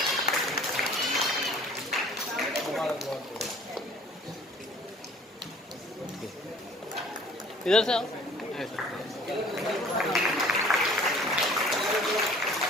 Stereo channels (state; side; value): normal; both; correlation 0.51